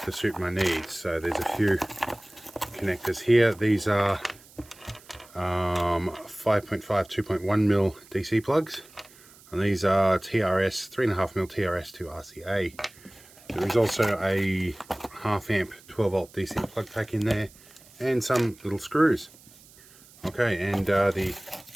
to suit my needs. So there's a few connectors here. These are 5.5 2.1mm DC plugs, and these are TRS 3.5mm TRS to RCA. There is also a half amp 12 volt DC plug pack in there, and some little screws. Okay, and the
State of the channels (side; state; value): right; noise; hiss, 24 dB below the sound